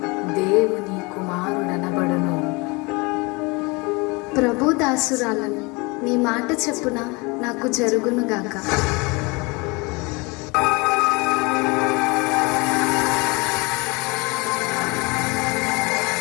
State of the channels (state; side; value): quieter; right; 27.0 dB